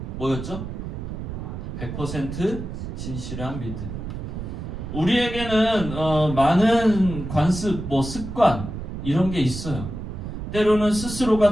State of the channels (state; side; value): noise; right; rumble, 7 dB below the sound